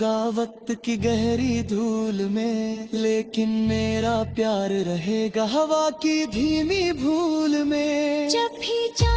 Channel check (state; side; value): identical; both; correlation 1.00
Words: वक्त की गहरी धूल में, लेकिन मेरा प्यार रहेगा हवा की धीमी भूल में। जब भी